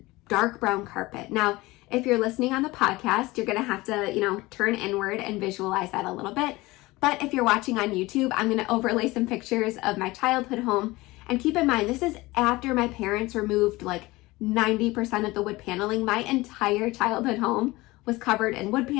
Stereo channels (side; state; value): right; quieter; 20.6 dB